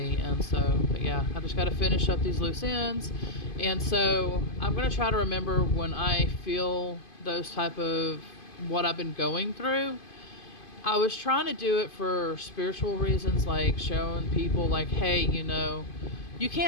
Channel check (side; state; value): right; late; 2.5 ms